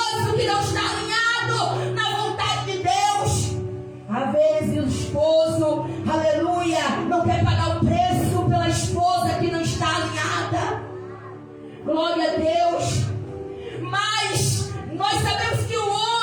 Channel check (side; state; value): both; identical; correlation 1.00